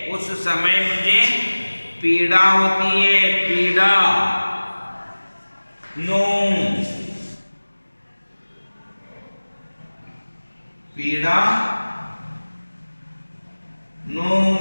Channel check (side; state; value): both; inverted; correlation -1.00